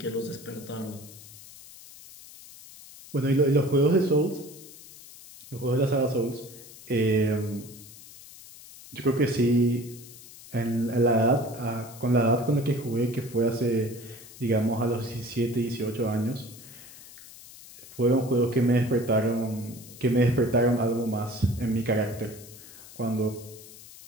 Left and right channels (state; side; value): noise; left; hiss, 18 dB below the sound